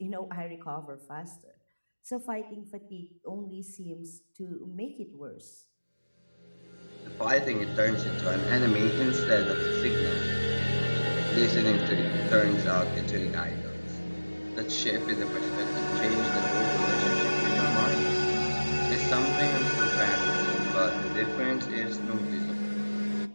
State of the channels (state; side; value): inverted; both; correlation -1.00